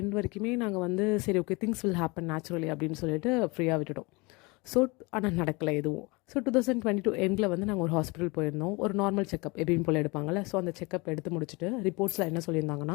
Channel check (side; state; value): right; quieter; 26.4 dB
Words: வரைக்குமே நாங்கள் வந்து சரி okay things will happen naturally அப்படின்னு சொல்லிட்டு ஃப்ரீயாக விட்டுட்டோம். ஸோ ஆனால் நடக்கலை எதுவும். ஸோ 2022 எண்டில் வந்து நாங்கள் ஒரு ஹாஸ்பிட்டல் போயிருந்தோம். ஒரு நார்மல் செக்கப் எப்படின்னு போல் எடுப்பாங்கள்ல. ஸோ அந்த செக்கப் எடுத்து முடிச்சுட்டு ரிப்போர்ட்ஸில் என்ன சொல்லியிருந்தாங்கன்னா,